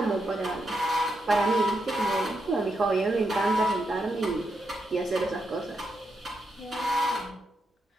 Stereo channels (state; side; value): normal; both; correlation 0.83